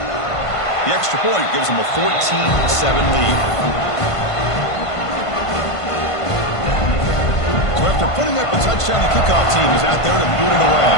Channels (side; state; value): right; late; 1.5 ms